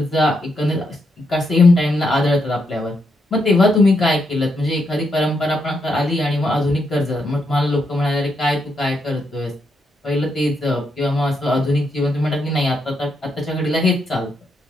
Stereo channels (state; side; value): normal; both; correlation 0.80